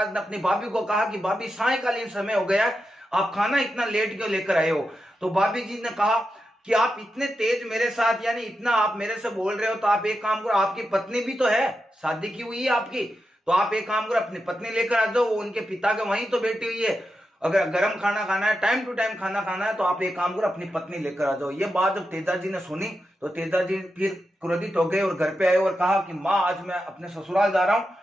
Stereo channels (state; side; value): normal; both; correlation 0.88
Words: ने अपनी भाभी को कहा कि भाभी सायंकालीन समय हो गया है, आप खाना इतना लेट क्यों लेकर आए हो? तो भाभी जी ने कहा कि आप इतने तेज मेरे साथ, यानी इतना आप मेरे से बोल रहे हो, तो आप एक काम करो, आपकी पत्नी भी तो है, शादी की हुई है आपकी, तो आप एक काम करो अपनी पत्नी लेकर आ जाओ, वो उनके पिता के वहीं तो बैठी हुई है। अगर गर्म खाना खाना है, टाइम टू टाइम खाना खाना है, तो आप एक काम करो अपनी पत्नी लेकर आ जाओ। ये बात जब तेजाजी ने सुनी तो तेजाजी फिर क्रोधित हो गए और घर पे आए और कहा कि माँ, आज मैं अपने ससुराल जा रहा हूँ